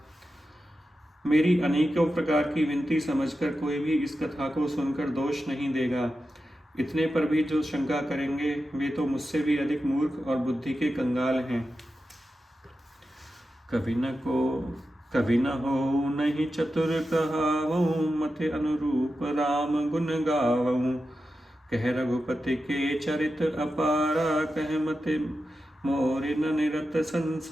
मेरी अनेकों प्रकार की विनती समझकर कोई भी इस कथा को सुनकर दोष नहीं देगा। इतने पर भी जो शंका करेंगे वे तो मुझसे भी अधिक मूर्ख और बुद्धि के कंगाल हैं। कवि न हो नहीं चतुर कहावऊँ, मति अनुरूप राम गुण गावऊँ। कह रघुपति के चरित अपारा, कह मति मोरि न निरत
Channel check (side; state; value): both; normal; correlation 0.91